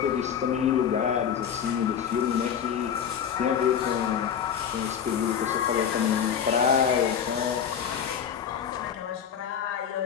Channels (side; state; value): right; quieter; 8.1 dB